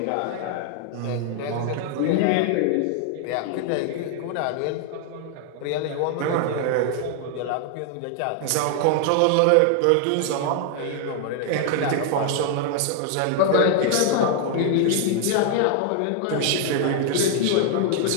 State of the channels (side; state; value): both; different; correlation 0.00